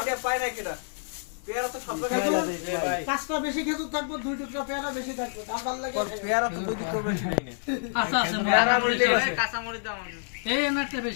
পাই না কিনা পেয়ারা তো সব ভাই পাঁচটা বেশি খেজুর থাকবো দুই টুকরা পেয়ারা বেশি থাকবে দাম ভালো লাগে পেয়ারা তো দুই দিক বেশি নাই না আচ্ছা আচ্ছা পেয়ারা বলতে কাঁচা মরিচ দাও আমাকে এই এনারটা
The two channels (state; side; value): silent; right; 59 dB below the other